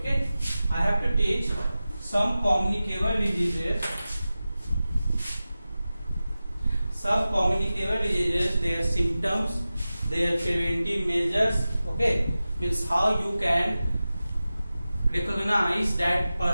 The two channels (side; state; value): both; inverted; correlation -0.95